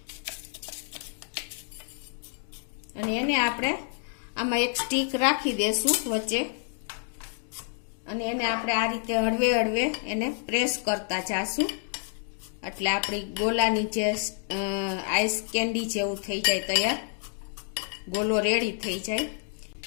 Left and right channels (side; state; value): right; silent; 55 dB below the other